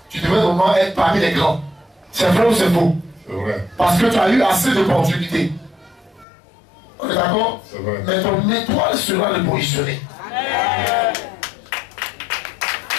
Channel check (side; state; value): right; drops out; at 6.2 s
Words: Tu devrais vraiment être parmi les grands. C'est vrai ou c'est faux? C'est vrai. Parce que tu as eu assez d'opportunités. On est d'accord? C'est vrai. Mais ton étoile sera repositionnée.